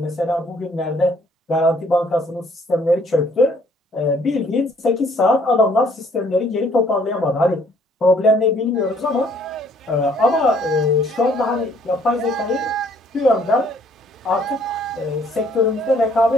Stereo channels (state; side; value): normal; both; correlation 0.62